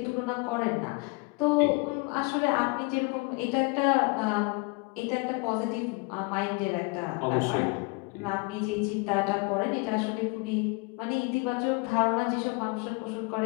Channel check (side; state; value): right; quieter; 28.1 dB